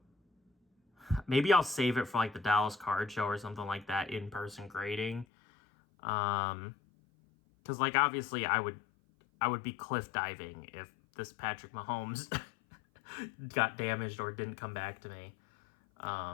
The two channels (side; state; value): right; drops out; at 5.2 s